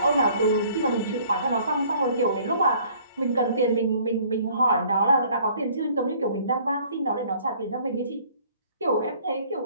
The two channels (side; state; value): both; inverted; correlation -0.57